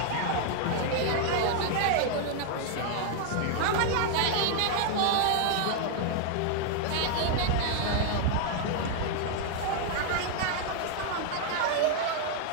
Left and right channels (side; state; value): both; different; correlation 0.00